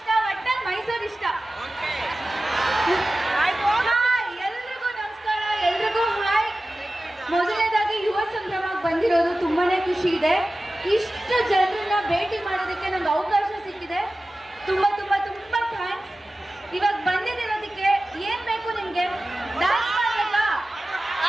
ಒಟ್ಟಲ್ಲಿ ಮೈಸೂರು ಇಷ್ಟ. ಹಾಯ್ ಎಲ್ರಿಗೂ ನಮಸ್ಕಾರ, ಎಲ್ರಿಗೂ ಹಾಯ್. ಮೊದಲನೇದಾಗಿ ಯುವ ಸಂಭ್ರಮಕ್ಕೆ ಬಂದಿರೋದು ತುಂಬಾನೇ ಖುಷಿ ಇದೆ. ಇಷ್ಟು ಜನರನ್ನ ಭೇಟಿ ಮಾಡೋದಕ್ಕೆ ನಂಗೆ ಅವಕಾಶ ಸಿಕ್ಕಿದೆ. ತುಂಬಾ ತುಂಬಾ ತುಂಬಾ ಥ್ಯಾಂಕ್ಸ್. ಇವಾಗ ಬಂದಿರೋದಕ್ಕೆ ಏನ್ ಬೇಕು ನಿಮ್ಗೆ? ಡ್ಯಾನ್ಸ್ ಮಾಡ್ಬೇಕಾ?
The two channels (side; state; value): both; normal; correlation 0.96